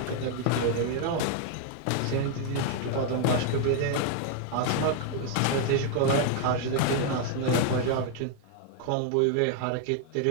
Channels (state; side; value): different; both; correlation 0.00